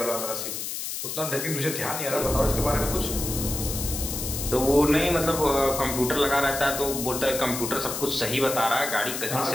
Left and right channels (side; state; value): left; noise; hiss, 5 dB below the sound